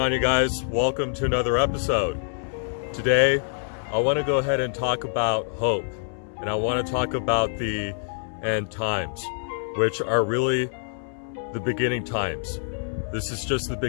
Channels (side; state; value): right; silent; 61 dB below the other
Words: you guys? Welcome to another episode. Today, I want to go ahead and talk about hope, and I want to talk about the end times, which are really the beginning times. This is just the